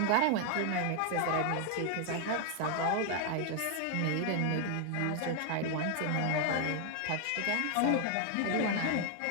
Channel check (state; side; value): different; both; correlation 0.00